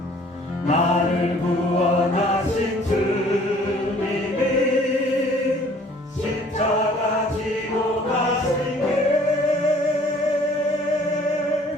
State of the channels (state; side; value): normal; both; correlation 0.55